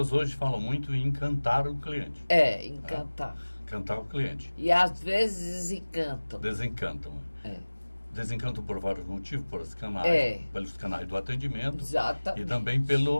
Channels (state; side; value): inverted; both; correlation -1.00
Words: hoje falam muito em encantar o cliente. Encantar. Encantar o cliente. E às vezes desencantam. Desencantam. Desencantam por vários motivos, pelos canais do atendimento. Exatamente. E também